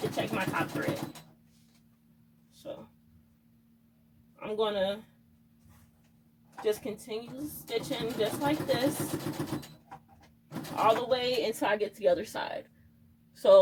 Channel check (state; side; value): identical; both; correlation 1.00